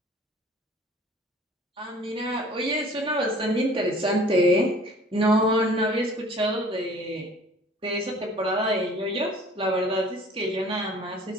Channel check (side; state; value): both; normal; correlation 0.50